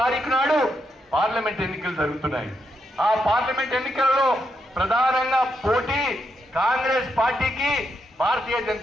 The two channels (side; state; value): both; normal; correlation 0.81